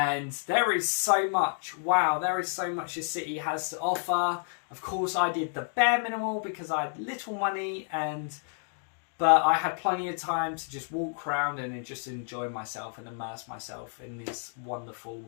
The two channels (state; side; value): silent; right; digital silence